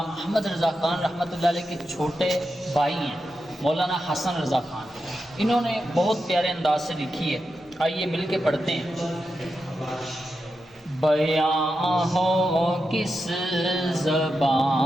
احمد رضا خان رحمۃ اللہ علیہ کے چھوٹے بھائی ہیں مولانا حسن رضا خان، انہوں نے بہت پیارے انداز سے لکھی ہے، آئیے مل کے پڑھتے ہیں۔ بیاں ہو کس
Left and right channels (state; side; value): normal; both; correlation 0.89